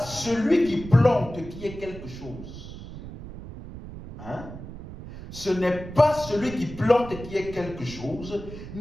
qui plante qui est quelque chose. Hein? Ce n'est pas celui qui plante qui est quelque chose,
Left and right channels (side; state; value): right; noise; rumble, 12 dB below the sound